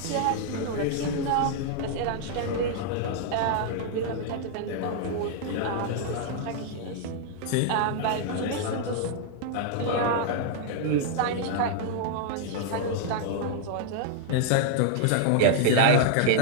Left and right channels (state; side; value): different; both; correlation -0.01